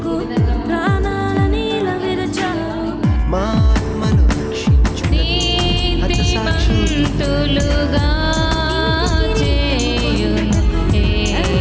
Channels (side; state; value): both; identical; correlation 1.00